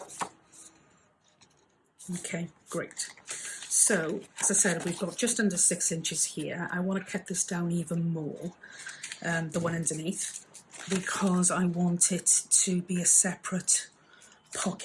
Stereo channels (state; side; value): identical; both; correlation 1.00